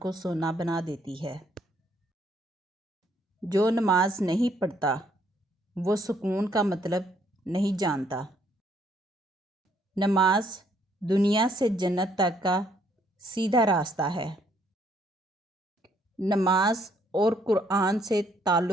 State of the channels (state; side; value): normal; both; correlation 0.68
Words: سونا بنا دیتی ہے۔ جو نماز نہیں پڑھتا وہ سکون کا مطلب نہیں جانتا۔ نماز دنیا سے جنت تک کا سیدھا راستہ ہے۔ نماز اور قرآن سے